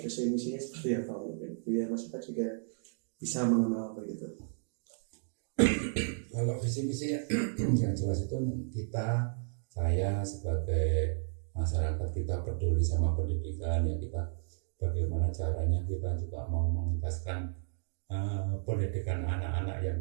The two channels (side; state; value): left; silent; digital silence